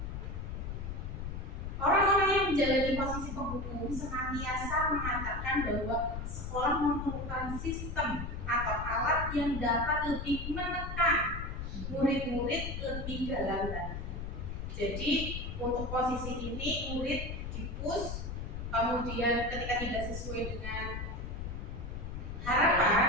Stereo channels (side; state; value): left; noise; rumble, 6 dB below the sound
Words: Orang-orang yang menjalani posisi penghukum senantiasa mengatakan bahwa sekolah memerlukan sistem atau alat yang dapat lebih menekan murid-murid lebih dalam lagi. Jadi untuk posisi ini murid di-push, kemudian ketika tidak sesuai dengan